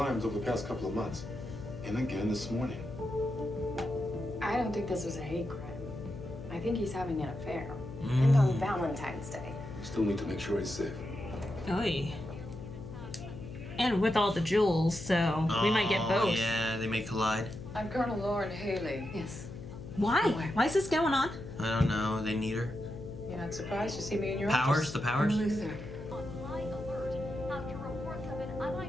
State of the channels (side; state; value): left; noise; hum, 12 dB below the sound